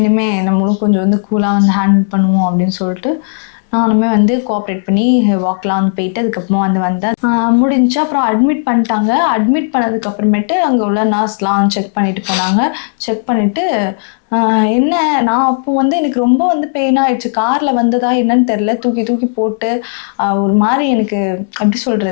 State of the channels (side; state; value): right; silent; digital silence